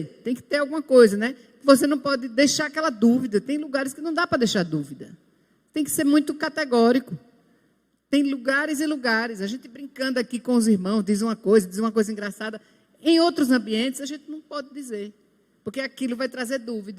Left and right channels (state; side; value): identical; both; correlation 1.00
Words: tem que ter alguma coisa, né? Você não pode deixar aquela dúvida. Tem lugares que não dá para deixar dúvida. Tem que ser muito categórico. Tem lugares e lugares. A gente brincando aqui com os irmãos, diz uma coisa engraçada. Em outros ambientes, a gente não pode dizer. Porque aquilo vai trazer